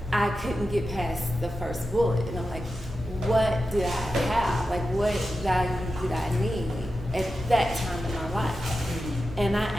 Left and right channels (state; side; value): normal; both; correlation 0.91